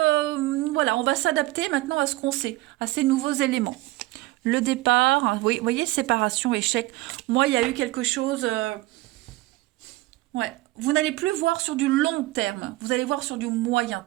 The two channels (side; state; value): left; quieter; 19.3 dB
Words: voilà, on va s'adapter maintenant à ce qu'on sait, à ces nouveaux éléments. Le départ, vous voyez, séparation, échec. Moi, il y a eu quelque chose... vous n'allez plus voir sur du long terme, vous allez voir sur du moyen